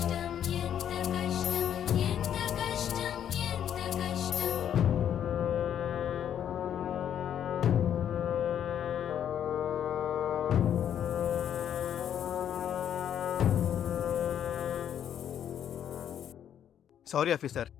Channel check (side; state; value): right; quieter; 9.6 dB